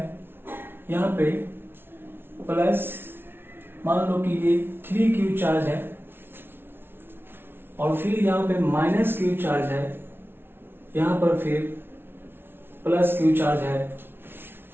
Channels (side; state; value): left; late; 0.11 ms